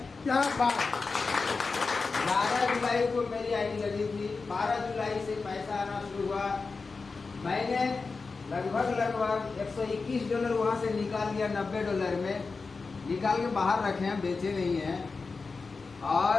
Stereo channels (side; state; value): right; quieter; 4.3 dB